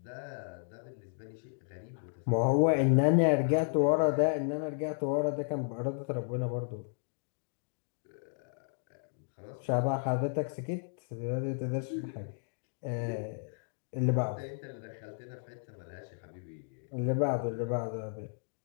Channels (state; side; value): silent; right; digital silence